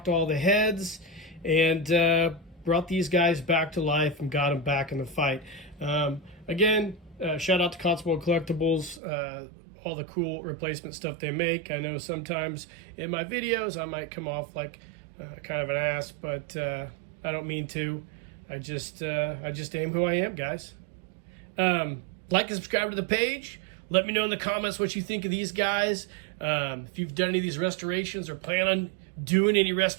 all the heads, and brought these guys back to life and got them back in the fight. Again, shout out to Cotswolds Collectibles, all the cool replacement stuff they make. I know sometimes in my videos I might come off like kind of an ass, but I don't mean to. I just am who I am, guys. Like and subscribe to the page. Let me know in the comments what you think of these guys. If you've done any of these restorations or plan on doing any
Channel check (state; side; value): drops out; left; at 9.0 s